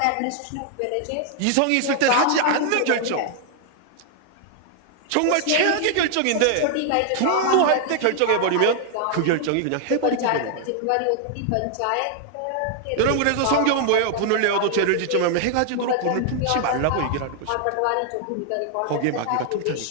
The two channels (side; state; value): both; different; correlation 0.00